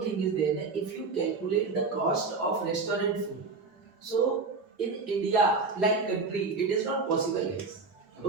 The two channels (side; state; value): left; quieter; 4.2 dB